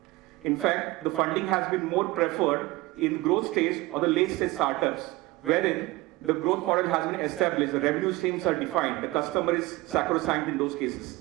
In fact, the funding has been more preferred in growth stage or the late stage startups, wherein the growth model has been established, the revenue streams are defined, the customer is sacrosanct in those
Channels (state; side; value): quieter; left; 20.3 dB